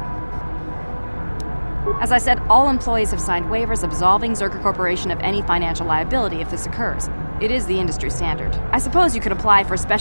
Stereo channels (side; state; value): both; inverted; correlation -1.00